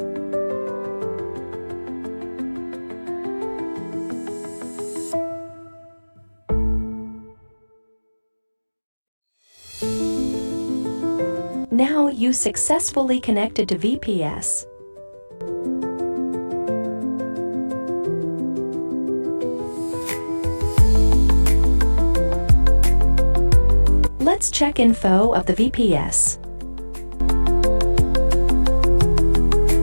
Now you successfully connected to VPS. Let's check info of the VPS.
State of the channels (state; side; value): inverted; both; correlation -1.00